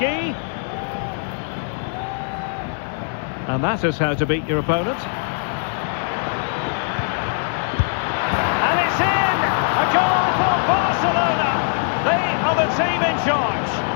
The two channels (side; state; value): right; silent; digital silence